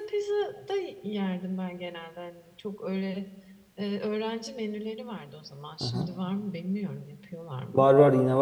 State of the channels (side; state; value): both; identical; correlation 1.00